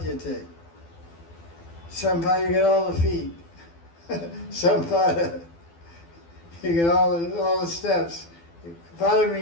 Sampada, you get all the feet. Sampada, you get all the steps. Pada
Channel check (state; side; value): late; right; 12 ms